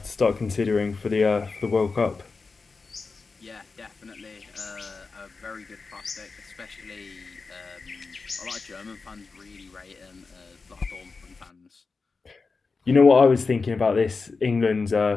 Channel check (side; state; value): right; quieter; 4.4 dB